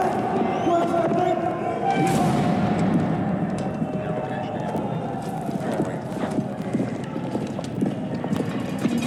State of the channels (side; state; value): both; identical; correlation 1.00